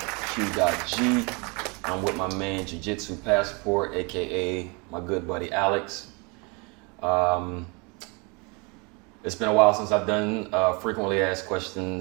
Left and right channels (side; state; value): left; quieter; 30.7 dB